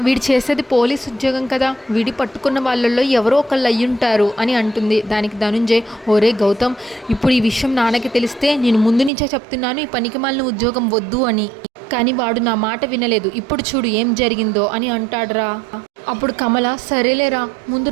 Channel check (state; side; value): drops out; left; at 9.1 s